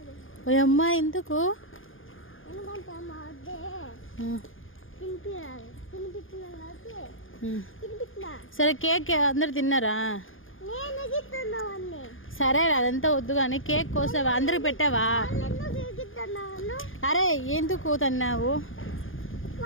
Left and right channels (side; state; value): right; late; 0.58 ms